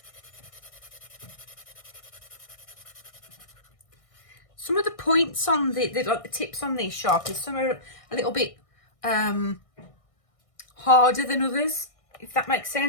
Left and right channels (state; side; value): late; right; 1.6 ms